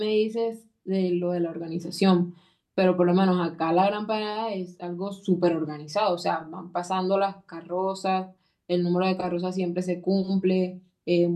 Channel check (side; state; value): both; identical; correlation 1.00